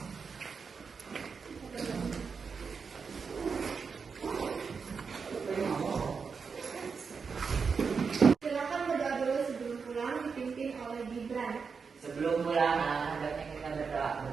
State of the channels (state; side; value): quieter; left; 5.5 dB